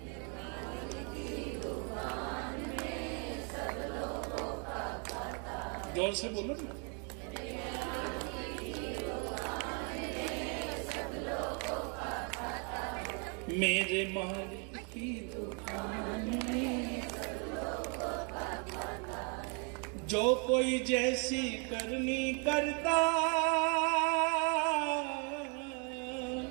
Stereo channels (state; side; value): quieter; left; 37.8 dB